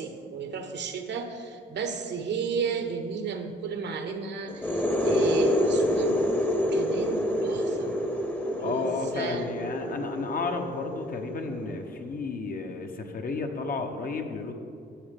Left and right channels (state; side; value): normal; both; correlation 0.54